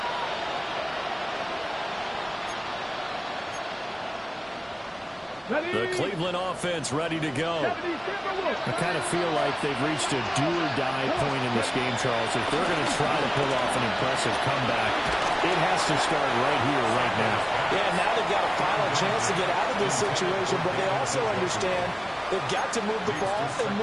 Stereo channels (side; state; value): both; identical; correlation 1.00